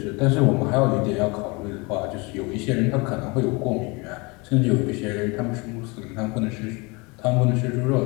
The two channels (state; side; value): quieter; right; 27.4 dB